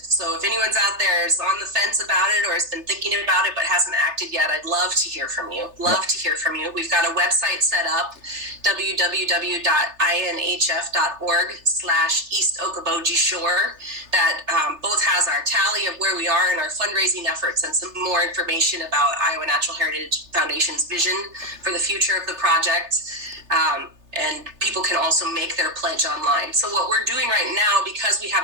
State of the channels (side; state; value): left; late; 3.3 ms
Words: anyone's out there is on the fence about it or has been thinking about it but hasn't acted yet, I'd love to hear from you. To hear from you. We've got a website set up, www.inhf.org/East Okoboji Shore, that both has our tally of where we are in our fundraising efforts and some more information about Iowa Natural Heritage Foundation's vision for the future of the project. And people can also make their pledge online. So what we're doing right now, because we